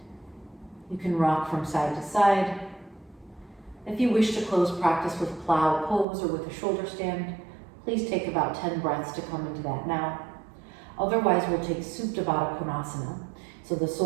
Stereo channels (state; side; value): drops out; left; at 6.1 s